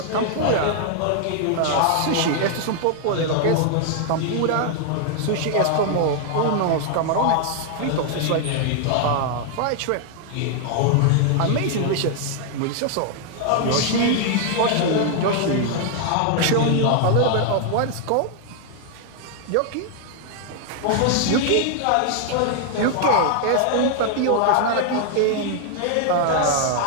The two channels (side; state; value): both; different; correlation 0.00